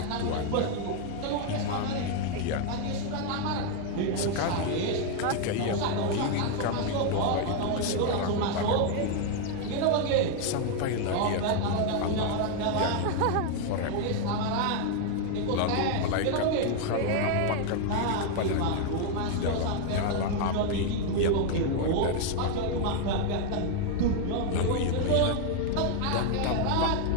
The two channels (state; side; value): different; both; correlation 0.00